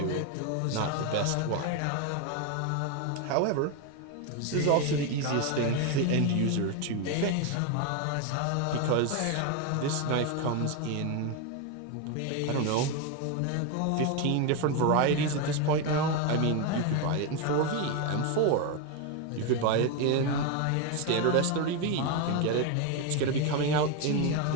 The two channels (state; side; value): different; both; correlation 0.02